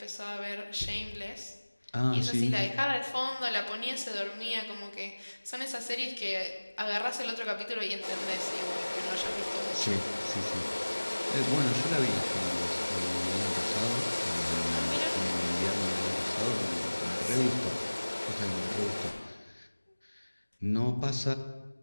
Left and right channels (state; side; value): inverted; both; correlation -1.00